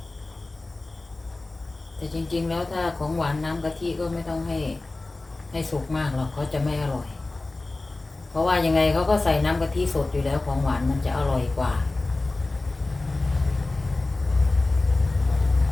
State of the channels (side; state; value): right; quieter; 3.1 dB